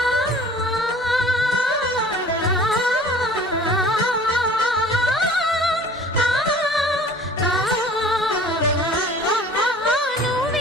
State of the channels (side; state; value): both; normal; correlation 0.48